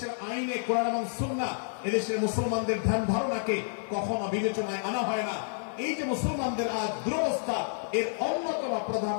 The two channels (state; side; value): silent; right; 58 dB below the other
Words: আইনে কোরআন এবং সুন্নাহ, এদেশের মুসলমানদের ধ্যান ধারণাকে কখনো বিবেচনায় আনা হয় না। এই যে মুসলমানদের আজ দুরবস্থা, এর অন্যতম প্রধান